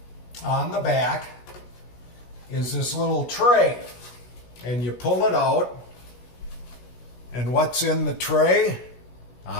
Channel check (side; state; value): right; late; 16 ms